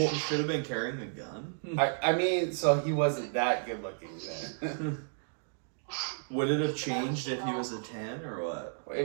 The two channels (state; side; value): silent; left; digital silence